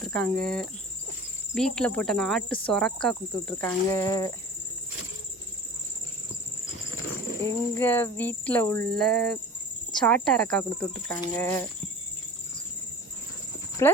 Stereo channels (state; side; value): normal; both; correlation 0.39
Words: வீட்டில் போட்ட நாட்டு சொரக்காய் கொடுத்து விட்ருக்காங்க. எங்கள் வீட்டில் உள்ள சாட்டாரக்காய் கொடுத்து விட்ருக்காங்க.